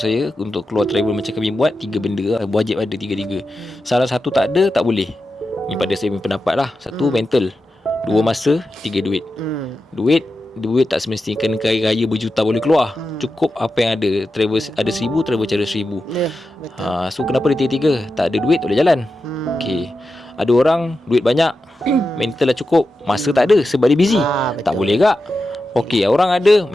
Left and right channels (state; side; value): normal; both; correlation 0.90